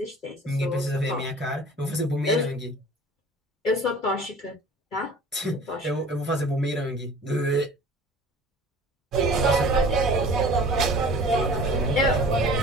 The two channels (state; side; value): normal; both; correlation 0.44